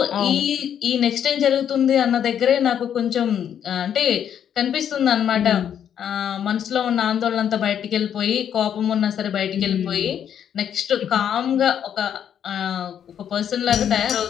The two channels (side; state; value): right; quieter; 9.1 dB